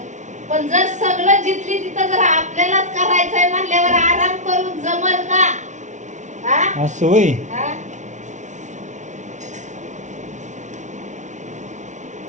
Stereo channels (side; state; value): left; late; 0.35 ms